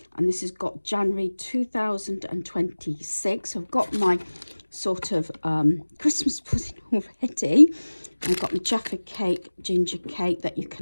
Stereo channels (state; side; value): inverted; both; correlation -1.00